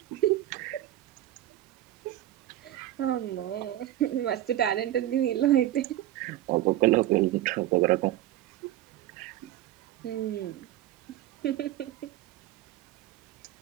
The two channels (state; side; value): quieter; left; 13.8 dB